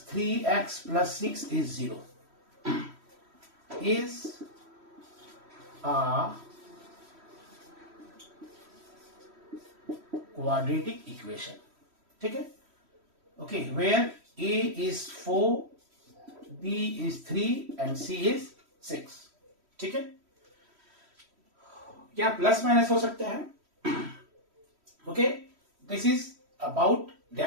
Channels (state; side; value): late; left; 3.1 ms